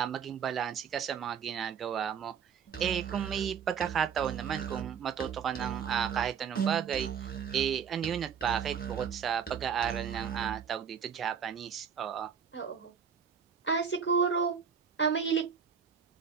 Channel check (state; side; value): quieter; left; 7.2 dB